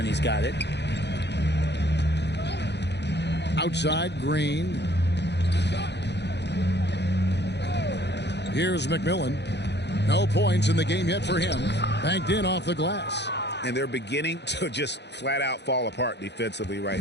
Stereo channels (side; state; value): right; late; 0.50 ms